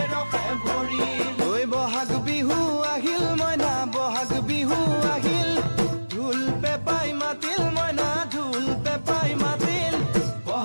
ৰখে ভৰিল ঐ বহাগ বিহু আহিল মইনা বহাগ বিহু আহিল ঢোল পেপাই মাতিল মইনা ঢোল পেপাই মাতিল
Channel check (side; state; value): both; inverted; correlation -1.00